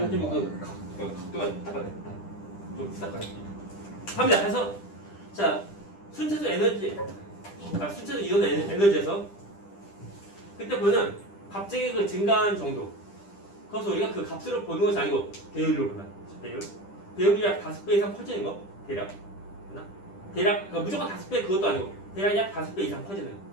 좀 각도가 딱딱해. 좀 딱딱해. 합니다. 그래서 자 순차적 에너지, 순차적 이온 에너지에서 그때 보면 갑자기 그 증가한 정도. 그래서 우리가 그 값으로 보는 것이 아니고 배율로 보면 배율이 약 5배 이상 커지는 거 대략. 대략 그러니까 무조건 5배 그것도 아니고 대략 약 5배 이상 커지는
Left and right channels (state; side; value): late; right; 10 ms